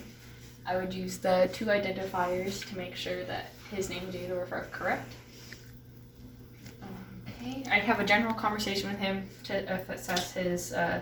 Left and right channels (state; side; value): identical; both; correlation 1.00